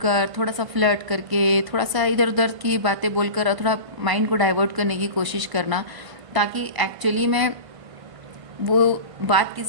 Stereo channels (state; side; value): late; left; 1.5 ms